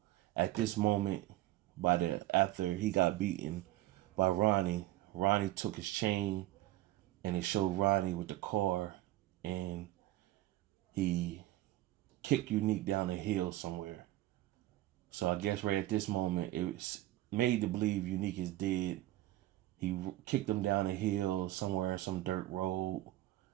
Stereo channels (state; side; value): quieter; left; 16.1 dB